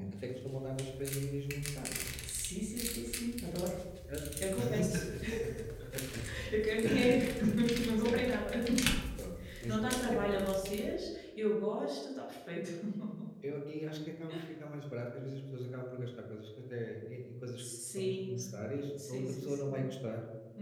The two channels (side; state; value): both; identical; correlation 1.00